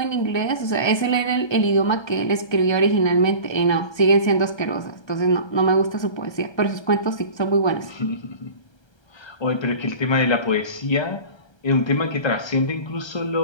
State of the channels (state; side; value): late; right; 1.3 ms